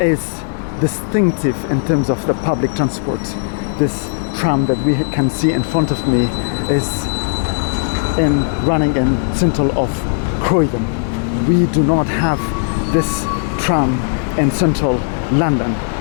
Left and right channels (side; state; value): right; silent; 68 dB below the other